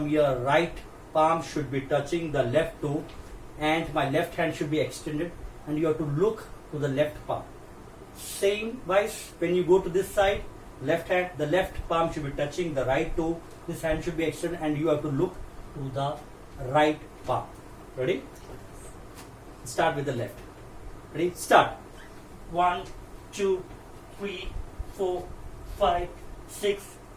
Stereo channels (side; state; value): both; identical; correlation 1.00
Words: your right palm should be touching the left toe, and my left hand should be extended, and you have to look to the left palm. Same wise, when you go to this side, left hand, the left palm should be touching the right toe. This hand should be extended and you have to look to the right palm. Ready? Start with the left. Ready? Start. 1, 2, 3, 4, 5, 6,